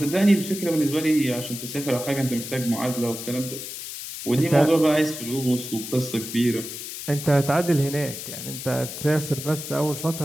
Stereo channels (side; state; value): left; noise; hiss, 9 dB below the sound